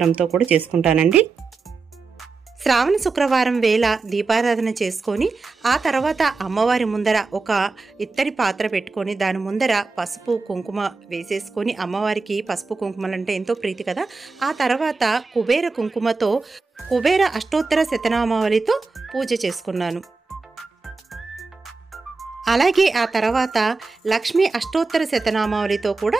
కూడా చేసుకుంటానండి. శ్రావణ శుక్రవారం వేళ దీపారాధన చేసుకొని ఆ తర్వాత అమ్మవారి ముందర ఒక ఇత్తడి పాత్ర పెట్టుకొని దాని ముందర పసుపు కుంకుమ వేసేసుకొని, అమ్మవారికి పసుపు కుంకుమలంటే ఎంతో ప్రీతి కదా, ఆ తర్వాత కుబేర కుంకుమతో కుబేర అష్టోత్తర శతనామావళితో పూజ చేసుకున్నాను. అలాగే ఆ తర్వాత లక్ష్మీ అష్టోత్తర శతనామావళితో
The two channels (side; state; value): left; quieter; 4.2 dB